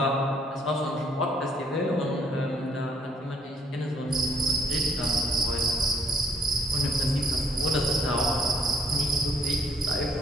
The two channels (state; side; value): normal; both; correlation 0.65